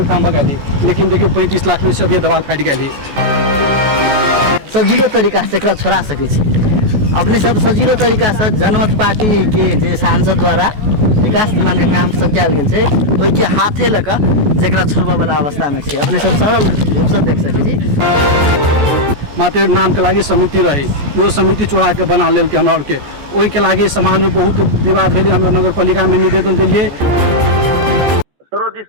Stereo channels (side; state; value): left; late; 14 ms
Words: में काम भगा दी लेकिन देखियो 35 लाख में से अभी दवाल फाट गेल सजिलो तरीका से एकरा छोड़ा सकै छी अपने सब सजिलो तरीका से जनमत पार्टी के जे सांसद द्वारा विकास निर्माण के काम सब कयल गेल छै ओहि के हाथे लऽ कऽ जेकरा छोड़बा वाला अवस्था में छै अपने सब सरल रूप से देख सकै छी मात्र नाम के लागी समिति रही वो समिति चोरा के बना लेल के हमरा के ओहि के लागी समाज में बहुत विवाद भेल हमरा नगर पालिका में निवेदन दिलिए सरोज जी